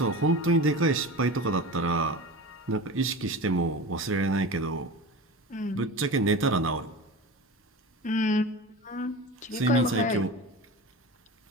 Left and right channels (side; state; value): both; normal; correlation 0.31